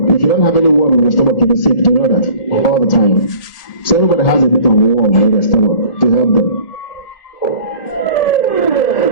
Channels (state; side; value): late; right; 1.7 ms